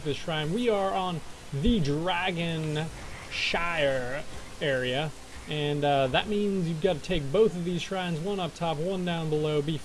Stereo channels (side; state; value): both; identical; correlation 1.00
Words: this shrine. We are on the Dragon Shire area, and that means you've got to take both of these shrines, one up top, one down below,